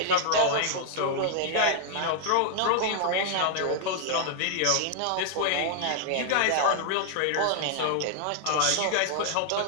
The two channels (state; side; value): different; both; correlation 0.00